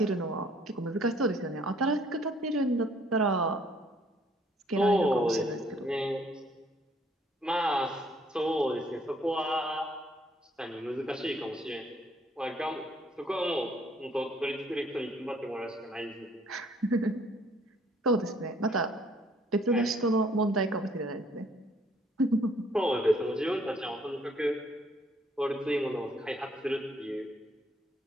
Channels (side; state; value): both; normal; correlation 0.63